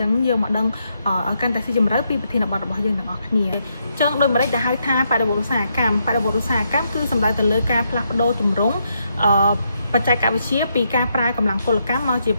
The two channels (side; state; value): both; inverted; correlation -0.78